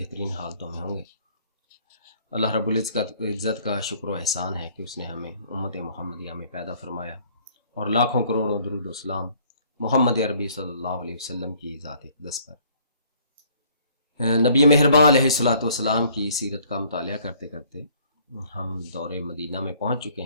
حالتوں میں ہوں گے۔ اللہ رب العزت کا شکر و احسان ہے کہ اس نے ہمیں امت محمدیہ میں پیدا فرمایا اور لاکھوں کروڑوں درود و سلام محمد عربی صلی اللہ علیہ وسلم کی ذات اقدس پر۔ نبی مہربان علیہ الصلوۃ والسلام کی سیرت کا مطالعہ کرتے کرتے ہم دور مدینہ میں پہنچ چکے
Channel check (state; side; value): inverted; both; correlation -0.59